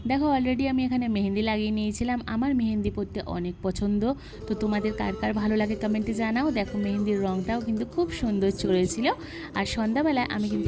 দেখো অলরেডি আমি এখানে মেহেন্দি লাগিয়ে নিয়েছিলাম। আমার মেহেন্দি পরতে অনেক পছন্দ, তো তোমাদের কার কার ভালো লাগে কমেন্টে জানাও। দেখো মেহেন্দির রঙটাও কিন্তু খুব সুন্দর চড়েছিল। আর সন্ধ্যাবেলায় আমি কিন্তু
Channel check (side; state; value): both; identical; correlation 1.00